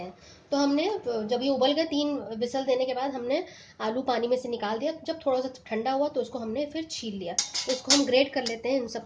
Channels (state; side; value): identical; both; correlation 1.00